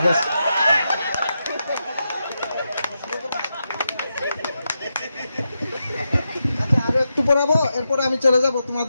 আছে। আচ্ছা আরো একটু পড়াবো, এরপরে আমি চলে যাব।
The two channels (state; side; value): inverted; both; correlation -0.87